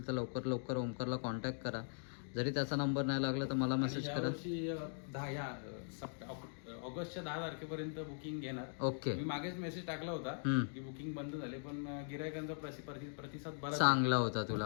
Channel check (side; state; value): right; silent; digital silence